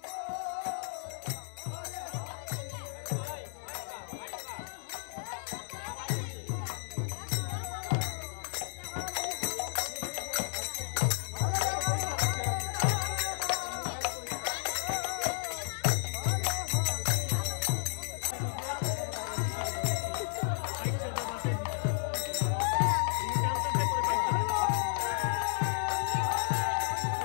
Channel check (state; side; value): silent; right; digital silence